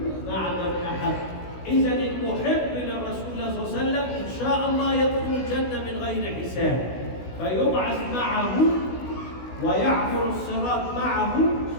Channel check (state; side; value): late; right; 16 ms